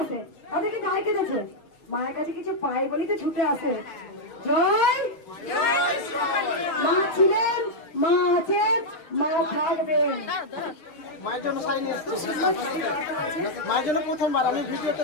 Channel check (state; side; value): late; right; 6.4 ms